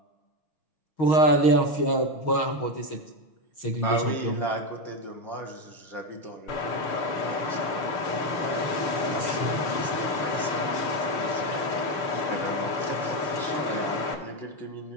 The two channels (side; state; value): right; late; 6.3 ms